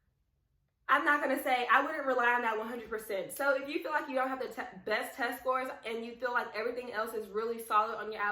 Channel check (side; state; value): both; identical; correlation 1.00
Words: I'm not going to say I wouldn't rely on that 100%. So if you feel like you don't have the best test scores and you feel like everything else is really solid on your